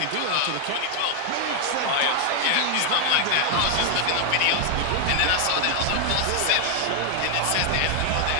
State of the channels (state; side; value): different; both; correlation 0.00